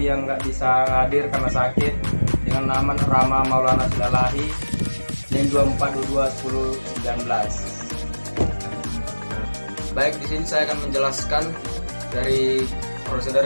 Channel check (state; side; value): inverted; both; correlation -1.00